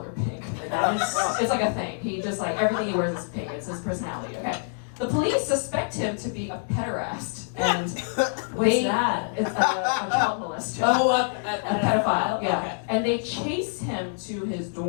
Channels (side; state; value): right; silent; digital silence